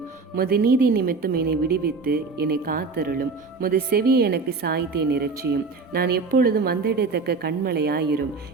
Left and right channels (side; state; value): left; quieter; 4.4 dB